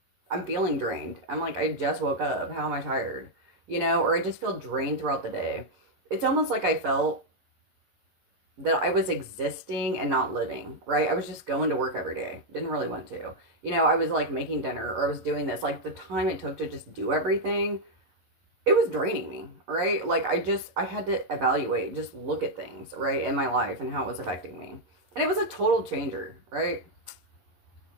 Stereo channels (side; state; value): left; late; 11 ms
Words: I'm feeling drained. I'm like, I just woke up. How am I tired? You know, or I just feel drained throughout the day. It's almost like I felt that I was existing and not living, right? I was just going to work every day. Didn't really want to. You know, I was like making dinner or I was doing this. Like the time it took to just do everything, it was draining me, right? Like I had to evaluate, just look at things, right, in my life and how it was affecting me. And it was a total changer, right?